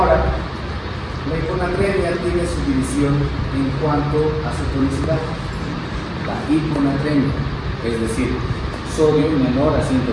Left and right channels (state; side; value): identical; both; correlation 1.00